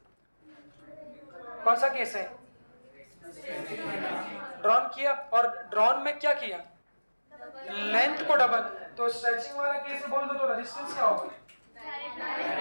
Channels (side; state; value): both; inverted; correlation -1.00